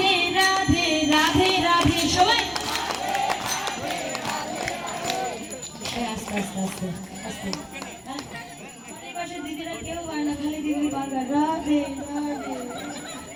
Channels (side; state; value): both; identical; correlation 1.00